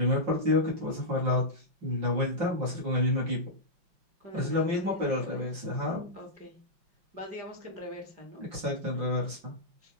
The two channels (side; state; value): left; late; 5.6 ms